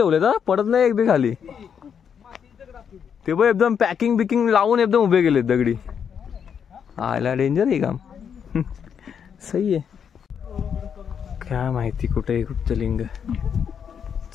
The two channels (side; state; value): right; quieter; 7.5 dB